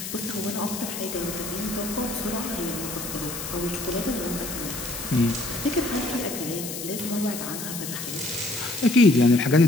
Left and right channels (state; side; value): noise; left; hiss, 7 dB below the sound